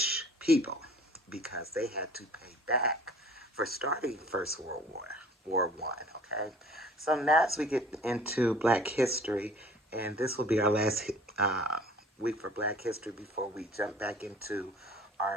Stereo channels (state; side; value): normal; both; correlation 0.49